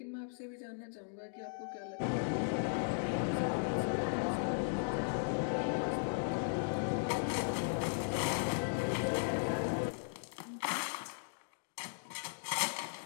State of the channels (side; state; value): right; silent; digital silence